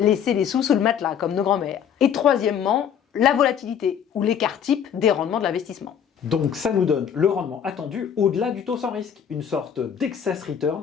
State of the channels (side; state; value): right; quieter; 8.4 dB